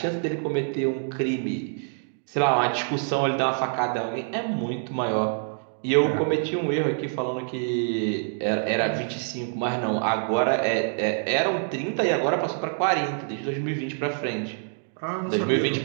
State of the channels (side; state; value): left; silent; digital silence